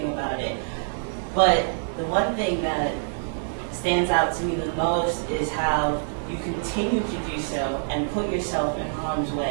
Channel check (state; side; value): silent; left; digital silence